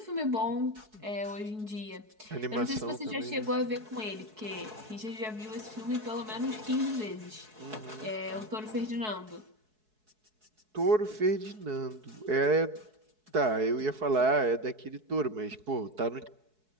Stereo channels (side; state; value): left; late; 4.7 ms